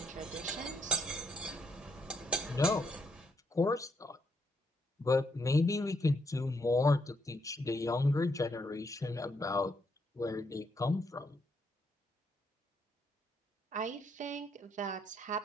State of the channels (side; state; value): both; normal; correlation 0.74